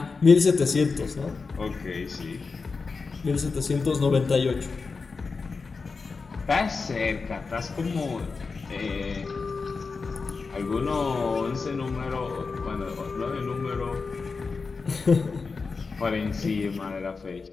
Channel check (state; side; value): quieter; right; 4.6 dB